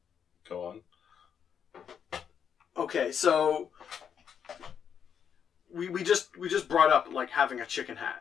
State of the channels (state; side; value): quieter; right; 7.8 dB